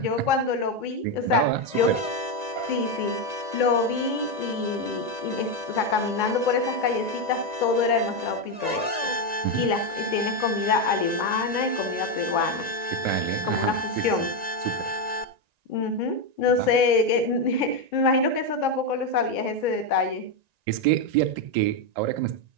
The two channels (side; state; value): left; late; 1.9 ms